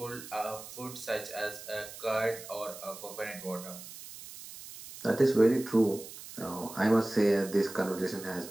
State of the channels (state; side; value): noise; right; hiss, 14 dB below the sound